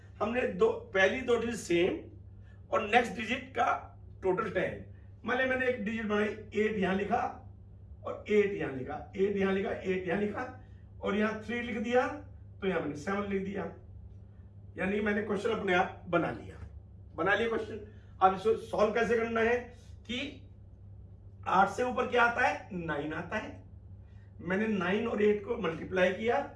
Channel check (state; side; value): identical; both; correlation 1.00